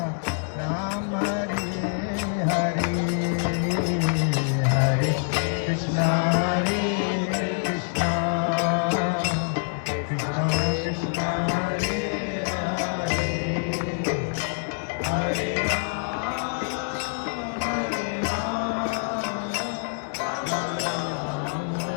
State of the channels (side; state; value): right; silent; digital silence